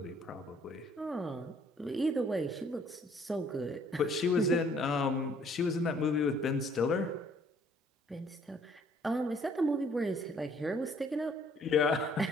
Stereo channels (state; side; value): normal; both; correlation 0.61